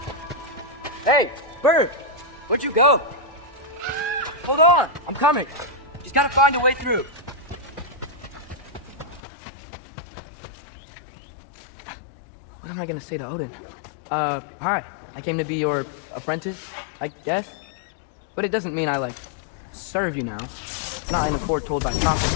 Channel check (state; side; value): drops out; right; at 9.2 s